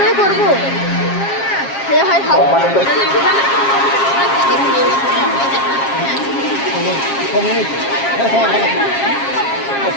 করবো? এ হয় খাও। সম্মানিত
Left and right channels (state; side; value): late; right; 7.4 ms